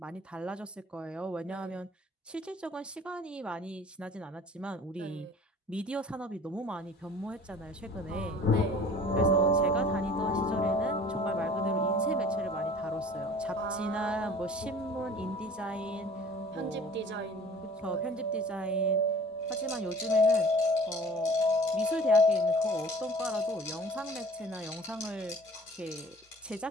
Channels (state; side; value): normal; both; correlation 0.47